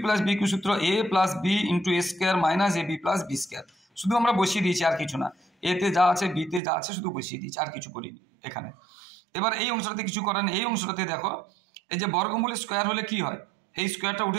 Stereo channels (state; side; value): drops out; left; at 6.6 s